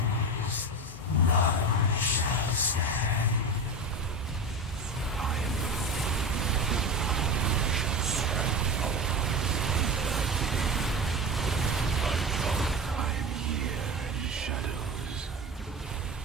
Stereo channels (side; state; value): both; normal; correlation 0.26